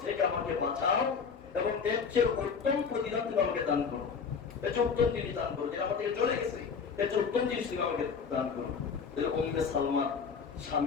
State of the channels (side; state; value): right; quieter; 5.8 dB